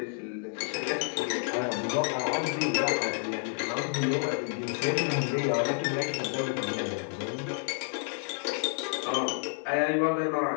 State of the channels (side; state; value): right; silent; 58 dB below the other